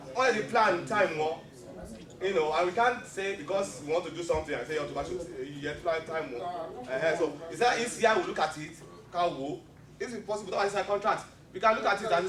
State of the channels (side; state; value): both; identical; correlation 1.00